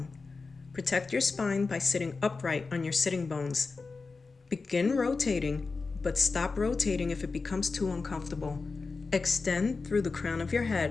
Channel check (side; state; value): right; quieter; 4.2 dB